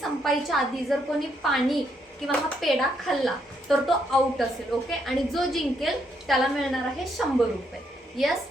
आधी जर कोणी पाणी किंवा हा पेढा खाल्ला तर तो आउट असेल. ओके, आणि जो जिंकेल त्याला मिळणार आहे 100 रुपये. यस,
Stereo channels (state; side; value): normal; both; correlation 0.75